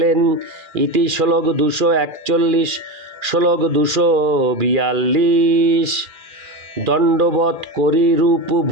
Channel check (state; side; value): late; left; 2.4 ms